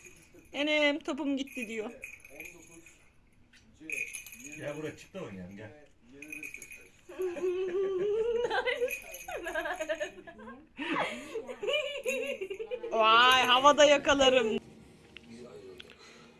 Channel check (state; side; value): identical; both; correlation 1.00